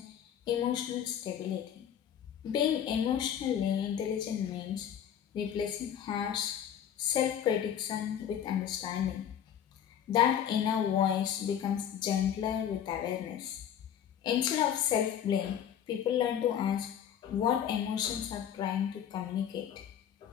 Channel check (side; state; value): right; quieter; 9.4 dB